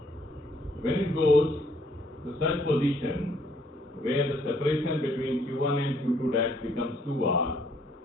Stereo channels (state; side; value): normal; both; correlation 0.66